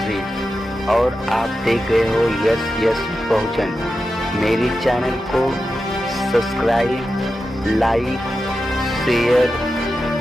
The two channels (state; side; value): normal; both; correlation 0.91